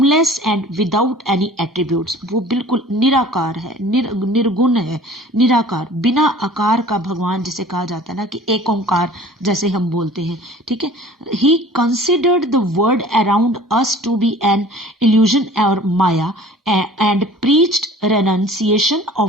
and without any attributes, वो बिल्कुल निराकार है, निर्गुण है, निराकार, बिना आकार का भगवान जिसे कहा जाता है ना कि एक ओंकार जैसे हम बोलते हैं, ठीक है। He considered the world around us to be an illusion और maya and preached renunciation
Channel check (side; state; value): both; normal; correlation 0.46